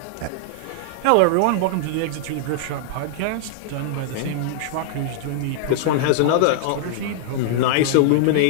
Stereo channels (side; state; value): both; different; correlation -0.01